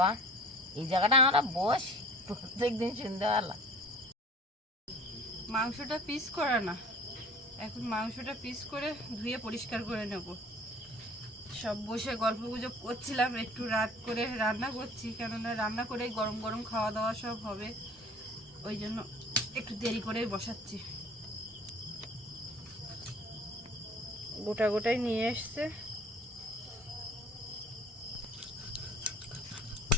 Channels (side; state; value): both; normal; correlation 0.46